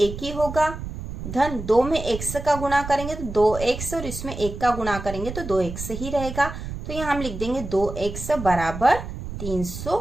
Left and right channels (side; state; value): right; noise; rumble, 8 dB below the sound